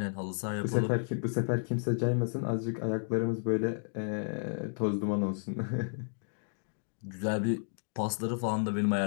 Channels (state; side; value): silent; right; digital silence